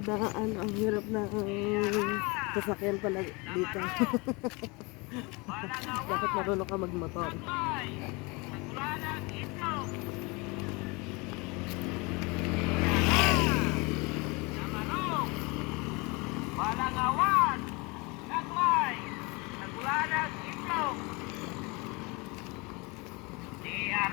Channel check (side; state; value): right; quieter; 27.2 dB